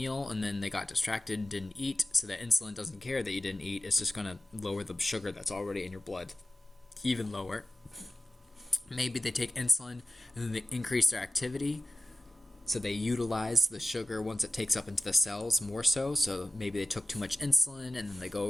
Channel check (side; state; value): both; normal; correlation 0.93